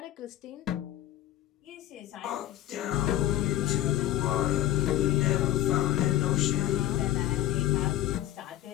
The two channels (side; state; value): right; quieter; 13.6 dB